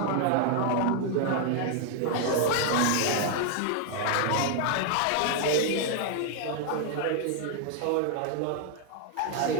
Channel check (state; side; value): different; both; correlation 0.00